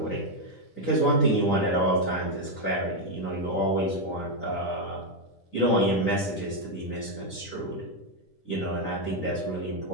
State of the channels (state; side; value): late; right; 10 ms